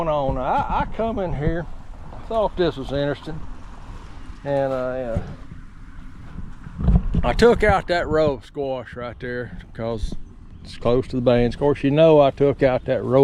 on. I come in here, I thought this was interesting, and I took out that row of squash right there because it's close to the beans. Of course, you know I took out that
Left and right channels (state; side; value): identical; both; correlation 1.00